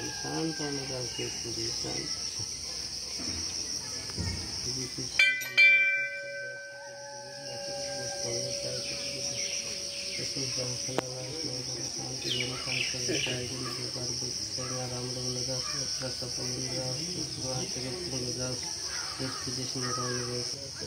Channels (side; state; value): both; identical; correlation 1.00